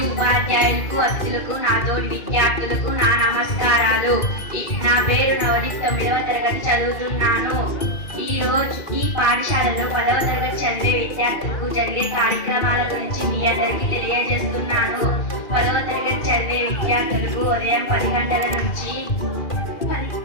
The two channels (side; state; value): right; late; 2.4 ms